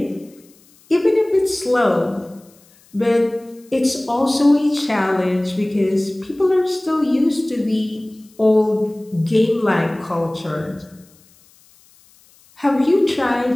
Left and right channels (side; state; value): left; noise; hiss, 30 dB below the sound